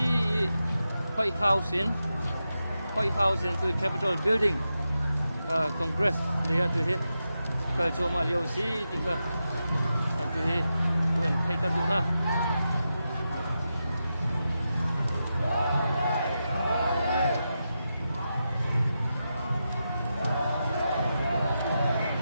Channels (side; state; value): both; inverted; correlation -0.89